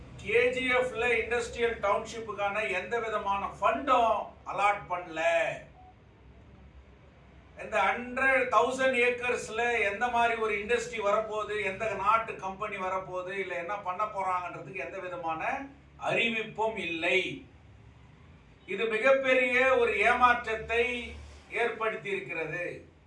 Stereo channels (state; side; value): identical; both; correlation 1.00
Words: கேஜிஎஃப்ல இண்டஸ்ட்ரியல் டவுன்ஷிப்புக்கான எந்த விதமான ஃபண்டும் அலாட் பண்ணல. இந்த 100,000 ஏக்கர்ஸ்ல எந்த மாதிரி ஒரு இண்டஸ்ட்ரி வரப்போகுது, எந்த நாட்டு கம்பெனி வரப்போகுது, இல்லை என்ன பண்ண போறாங்கன்றதுக்கு எந்த விதமான அறிவிப்பும் இல்லை. இது மிகப்பெரிய ஒரு ஏமாற்றத்தை ஏற்படுத்தி இருக்கிறது.